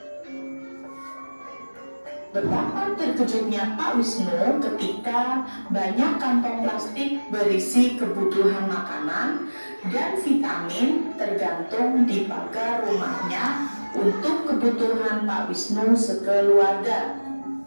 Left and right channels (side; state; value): both; inverted; correlation -1.00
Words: Betapa terkejutnya Pak Wisnu ketika banyak kantong plastik berisi kebutuhan makanan dan vitamin tergantung di pagar rumahnya untuk kebutuhan Pak Wisnu sekeluarga.